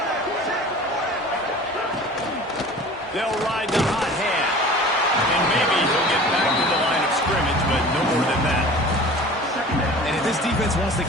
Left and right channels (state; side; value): normal; both; correlation 0.42